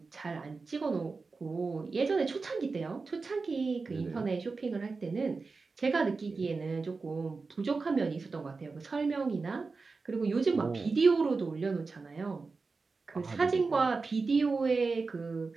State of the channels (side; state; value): left; quieter; 4.2 dB